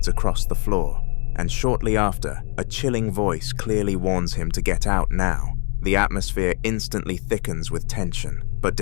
across the floor, and shortly after, a chilling voice clearly warns him to get out now. The atmosphere instantly thickens with tension, but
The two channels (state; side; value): quieter; right; 37.4 dB